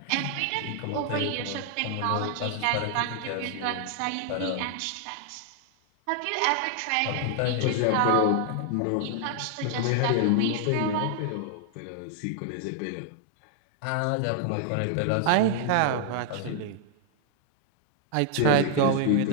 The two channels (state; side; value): different; both; correlation 0.00